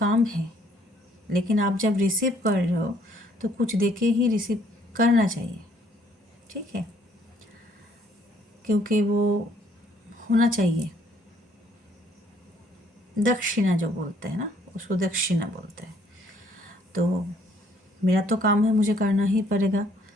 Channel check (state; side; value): normal; both; correlation 0.64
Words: है, लेकिन आप जब रिसीव कर रहे हो तो कुछ देके ही रिसीव करना चाहिए। ठीक है, क्योंकि वो होना चाहिए। दक्षिणा जो बोलते हैं ना, उसको दक्षिणा बोलते हैं। तो मेरा तो काम है, मुझे करना ही पड़ेगा।